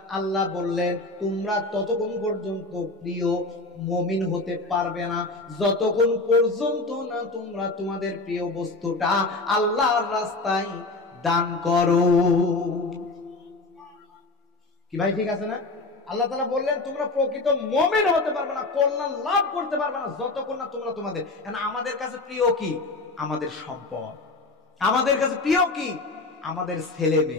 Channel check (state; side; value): quieter; right; 3.2 dB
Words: আল্লাহ বললেন, তোমরা ততক্ষণ পর্যন্ত প্রিয় মুমিন হতে পারবে না যতক্ষণ পর্যন্ত না তোমরা তোমাদের প্রিয় বস্তুটা আল্লাহর রাস্তায় দান করো। কি ভাই ঠিক আছে না? আল্লাহ তাআলা বললেন, তোমরা প্রকৃত মুমিন হতে পারবে না, কল্যাণ লাভ করতে পারবে না যতক্ষণ না তোমরা তোমাদের। আমাদের কাছে প্রিয় কি? আমাদের সম্পদ। আমাদের কাছে প্রিয় কি? আমাদের ছেলে